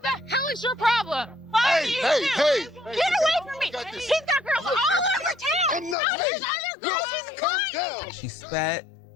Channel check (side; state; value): right; drops out; at 6.0 s